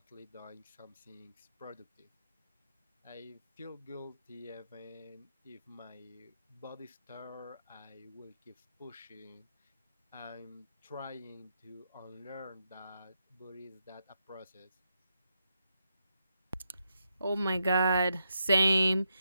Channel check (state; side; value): inverted; both; correlation -0.83